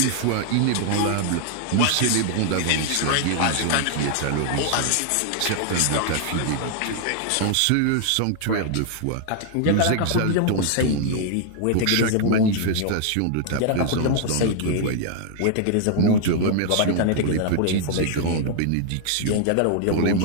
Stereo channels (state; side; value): different; both; correlation -0.01